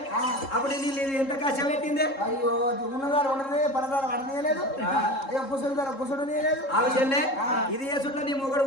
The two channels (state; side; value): late; right; 3.7 ms